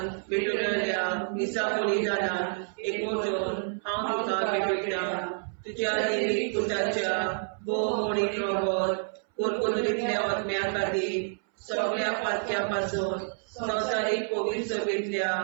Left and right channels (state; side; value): silent; left; 59 dB below the other